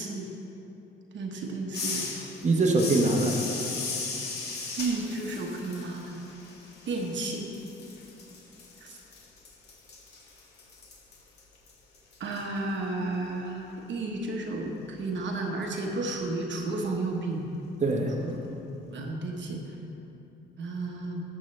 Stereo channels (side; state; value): both; normal; correlation 0.53